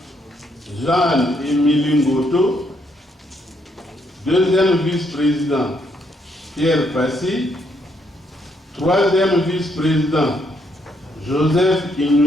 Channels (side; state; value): both; normal; correlation 0.74